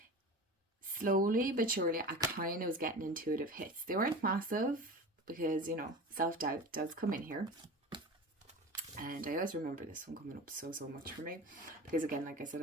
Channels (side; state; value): both; normal; correlation 0.32